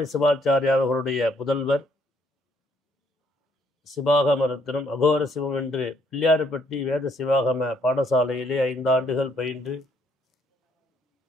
சிவாச்சாரியார் அவர்களுடைய புதல்வர் சிவாகம ரத்னம் அகோர சிவம் என்று பிள்ளையார்பட்டி வேத சிவாகம பாடசாலையிலே 5 ஆண்டுகள் பயின்று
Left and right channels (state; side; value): normal; both; correlation 0.68